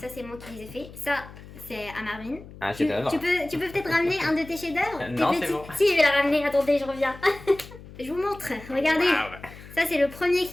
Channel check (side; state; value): left; noise; hum, 17 dB below the sound